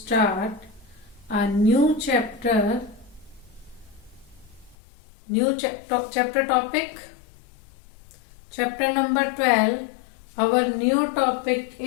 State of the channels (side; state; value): right; drops out; at 4.8 s